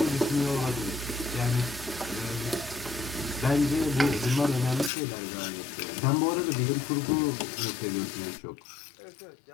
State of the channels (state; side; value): drops out; right; at 4.9 s